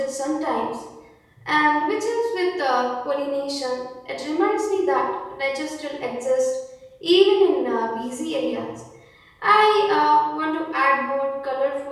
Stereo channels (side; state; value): both; identical; correlation 1.00